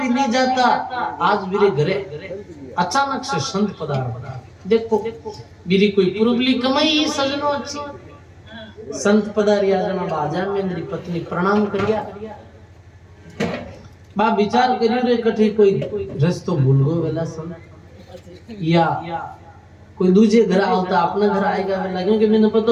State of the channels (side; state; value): both; identical; correlation 1.00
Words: नहीं जाता आज मेरे घरे अचानक से संत पधार देखो मेरी कोई पुरबली कमाई ही सजनो अच्छी संत पधारिया जना बाजा में मेरी पत्नी प्रणाम करिया बा विचार करियो रे कठी कोई रस्तो भूल गयो वेला संत या कोई दूजे घर आवता अपना घर आएगा वेला क्योंकि मैंने पता